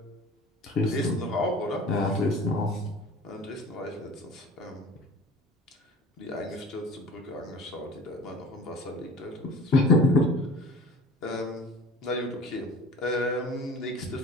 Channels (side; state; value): both; normal; correlation 0.42